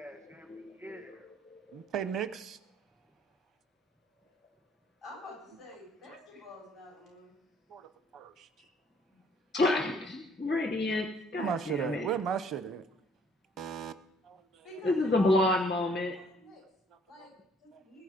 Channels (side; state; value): both; normal; correlation 0.62